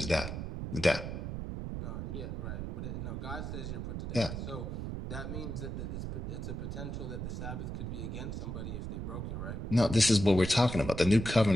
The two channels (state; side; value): noise; right; rumble, 5 dB below the sound